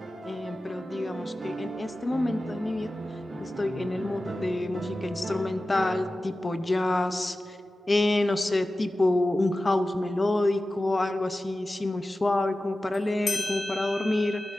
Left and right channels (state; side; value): normal; both; correlation 0.95